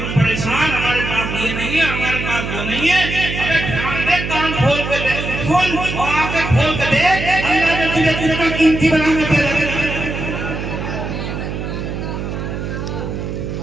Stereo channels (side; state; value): right; noise; hum, 5 dB below the sound